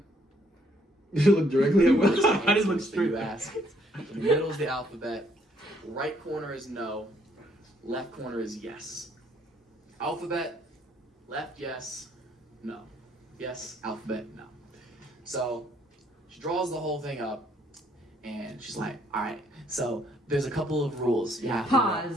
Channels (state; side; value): normal; both; correlation 0.67